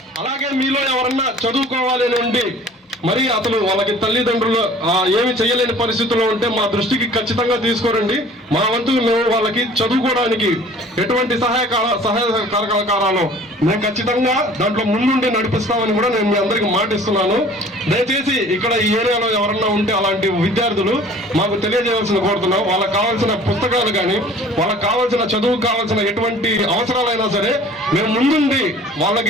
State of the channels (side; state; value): both; normal; correlation 0.48